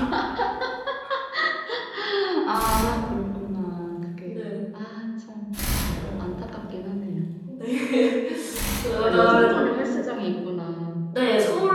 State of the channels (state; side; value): identical; both; correlation 1.00